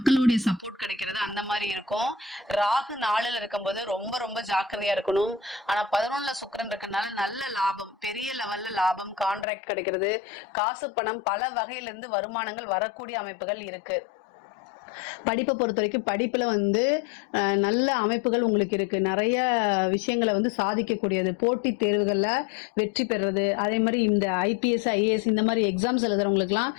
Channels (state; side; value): drops out; right; at 9.5 s